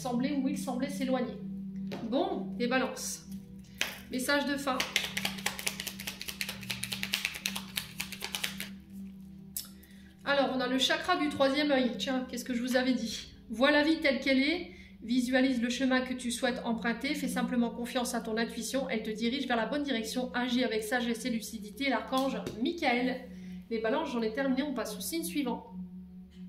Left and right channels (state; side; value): identical; both; correlation 1.00